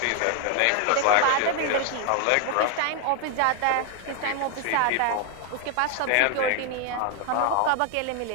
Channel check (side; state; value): both; different; correlation 0.00